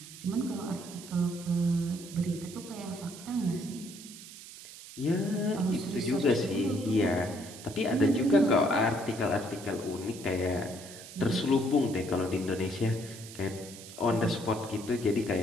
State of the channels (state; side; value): noise; right; hiss, 15 dB below the sound